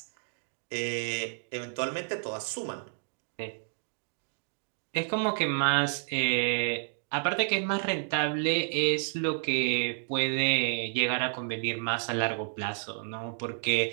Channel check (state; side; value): silent; left; digital silence